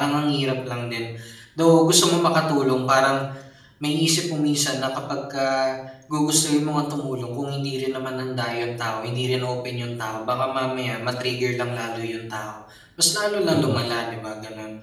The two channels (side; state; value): both; identical; correlation 1.00